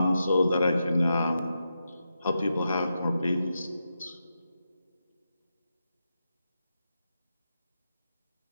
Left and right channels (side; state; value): both; inverted; correlation -0.87